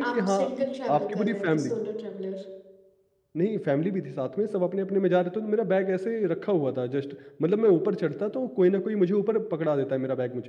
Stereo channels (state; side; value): identical; both; correlation 1.00